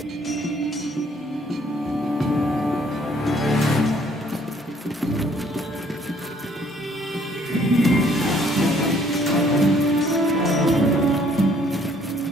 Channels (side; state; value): both; normal; correlation 0.62